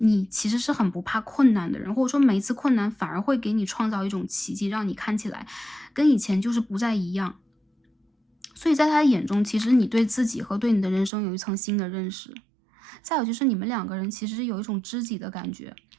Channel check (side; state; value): left; drops out; at 11.1 s